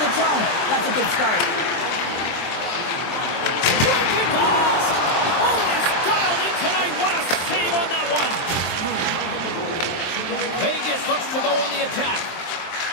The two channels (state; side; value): late; right; 23 ms